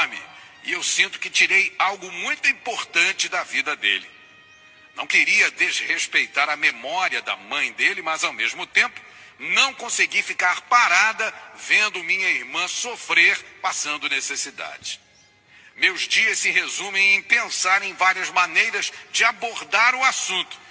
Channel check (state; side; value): identical; both; correlation 1.00